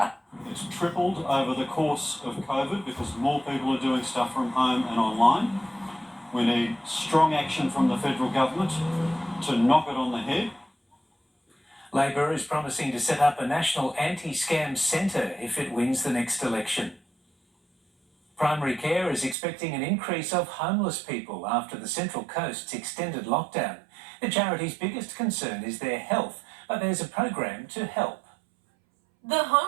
It's tripled over the course of COVID because more people are doing stuff from home and online. We need strong action from the federal government to knock it on the head. Labor is promising to set up a national anti-scam centre if it wins the next election. Primary Care is expecting an increase of homeless people after the Central Coast's extended lockdown. The charity's biggest concern is their health, but there's a program to help. The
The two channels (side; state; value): left; drops out; at 19.4 s